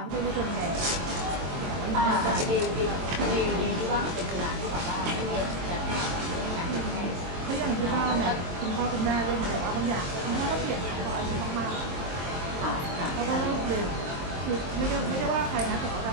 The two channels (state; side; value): late; left; 23 ms